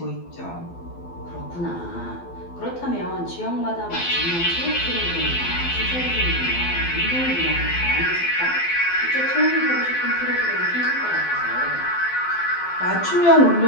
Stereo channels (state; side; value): late; right; 12 ms